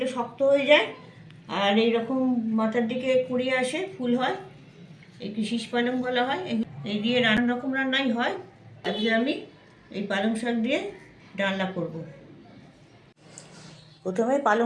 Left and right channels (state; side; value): identical; both; correlation 1.00